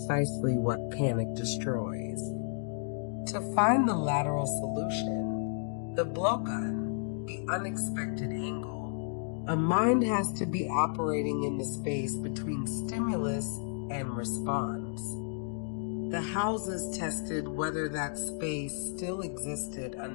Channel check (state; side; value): silent; right; digital silence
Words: what panic destroys. To find the lateral solution, the blowgun, the unexpected angle, a mind has to be operating in the space between stimulus and response. The houses tested whether that space still existed